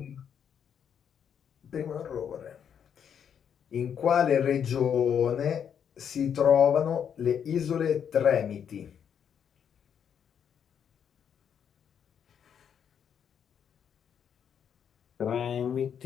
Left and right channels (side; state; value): right; quieter; 8.1 dB